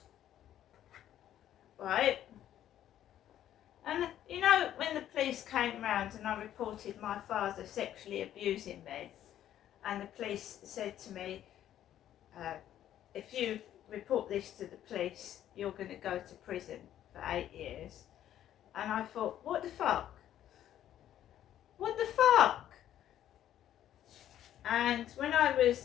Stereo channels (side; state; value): right; quieter; 11.5 dB